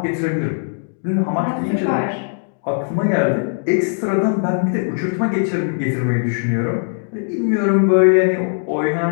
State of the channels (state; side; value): silent; right; digital silence